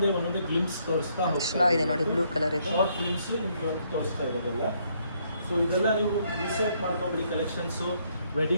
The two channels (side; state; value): both; inverted; correlation -0.71